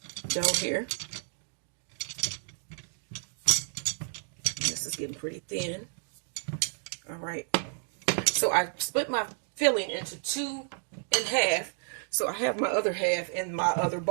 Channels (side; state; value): left; silent; 57 dB below the other